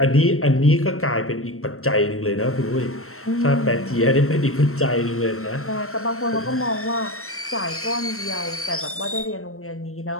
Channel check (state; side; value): late; right; 0.63 ms